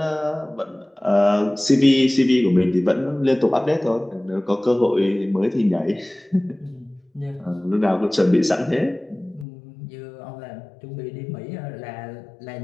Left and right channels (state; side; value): drops out; right; at 9.5 s